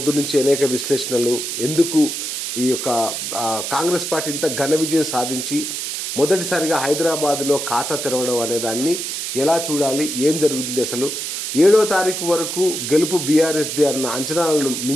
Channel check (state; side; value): noise; right; hiss, 4 dB below the sound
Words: నుంచి అనేక విశ్లేషణలు. ఎందుకు ఈ యొక్క కాంగ్రెస్ పార్టీ ఇంత ఘన విజయం సాధించి మొదటిసారిగా హైదరాబాద్లో ఖాతా తెరవడం అనే దాన్ని ఎలా చూడాలి, ఏం జరుగుతుంది, అసలు 7వ తారీఖు వరకు గెలుపు బీఆర్ఎస్ది అన్న అంచనాలను